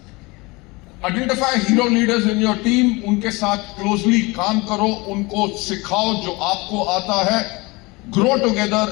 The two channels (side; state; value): right; quieter; 24.6 dB